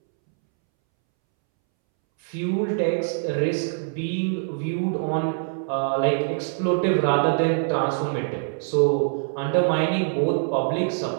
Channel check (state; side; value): silent; left; 63 dB below the other